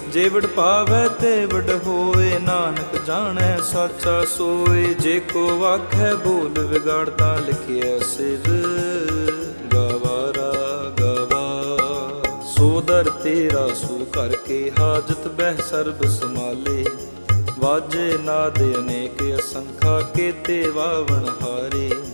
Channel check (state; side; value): inverted; both; correlation -1.00